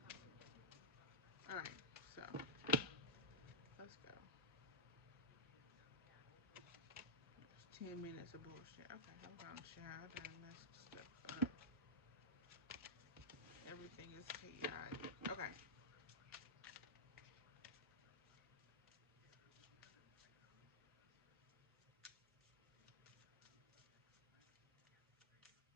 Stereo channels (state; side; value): normal; both; correlation -0.09